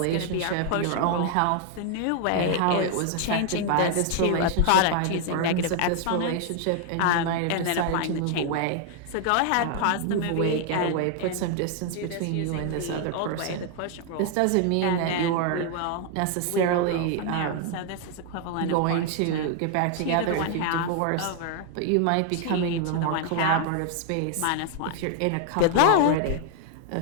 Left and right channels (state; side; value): different; both; correlation 0.00